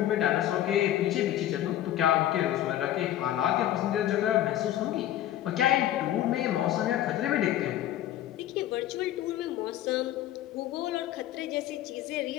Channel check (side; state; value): right; quieter; 12.7 dB